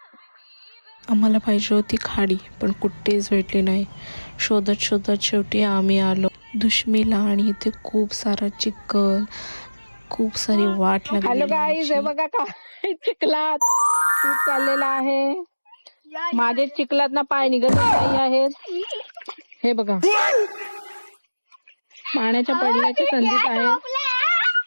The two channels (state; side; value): inverted; both; correlation -1.00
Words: आम्हाला पाहिजे होती खाडी पण कुठेच भेटली नाही. शोधत शोधत शेवटी आम्ही आलो दुश्मीला आणि इथे खूप सारा चिखल, खूप सारी वाट हॅलो लागलेली गाईज, हे आमची. बघा काय चिखलात शूट चाललेला आहे. माझे चिखलात ना पाय निघतच नाही आहेत. हे बघा पाण्याच्या पडण्याच्या संधीत आहे.